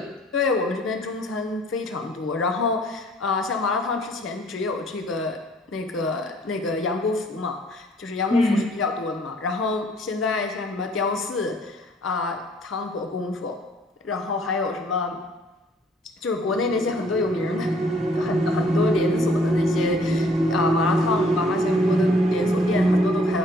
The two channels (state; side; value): normal; both; correlation 0.59